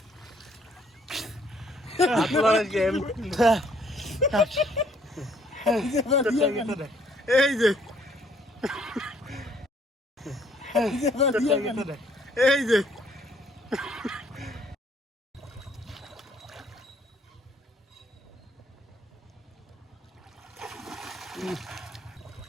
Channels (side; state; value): both; normal; correlation 0.64